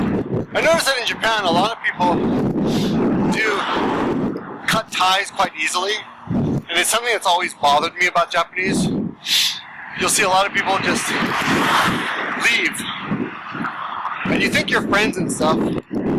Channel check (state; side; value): identical; both; correlation 1.00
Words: I noticed that in Japan, a lot of people do cut ties quite easily, and it's something that's always bothered me about Japanese. You'll see a lot of people just leave, and you think you're friends and stuff. You